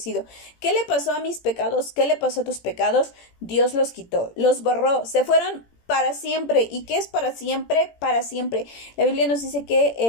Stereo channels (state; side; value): late; right; 18 ms